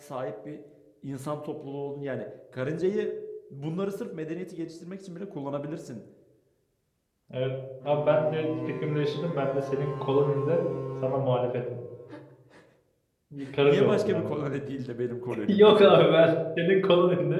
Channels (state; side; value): identical; both; correlation 1.00